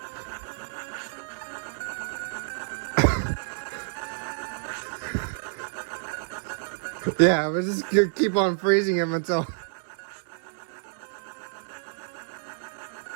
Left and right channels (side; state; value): left; silent; 59 dB below the other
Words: Yeah, we're just gonna keep on freezing him until...